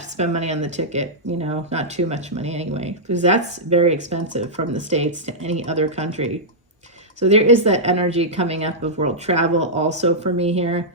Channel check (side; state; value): both; normal; correlation -0.10